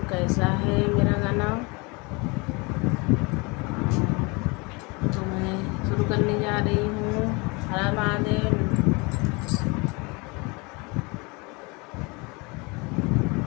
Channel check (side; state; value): right; quieter; 28.0 dB